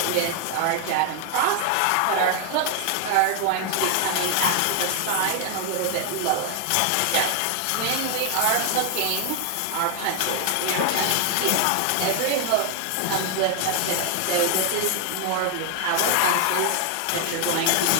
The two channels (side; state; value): both; different; correlation 0.00